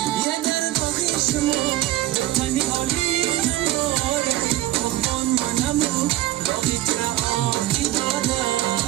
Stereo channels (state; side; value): quieter; left; 15.4 dB